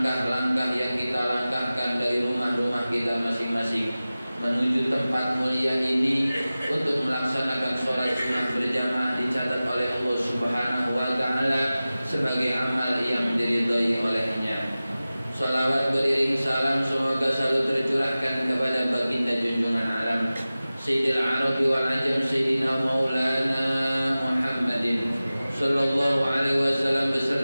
yang kita langkahkan dari rumah-rumah kita masing-masing menuju tempat mulia ini untuk melaksanakan sholat Jumat berjamaah dicatat oleh Allah Subhanahu wa taala sebagai amal yang diridhai olehnya. Salawat beriring salam semoga selalu tercurahkan kepada baginda junjungan alam Sayyidil Arabi wal Ajam, Sayyidina Maulana Muhammadin sallallahu alaihi wasallam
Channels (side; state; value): both; inverted; correlation -0.97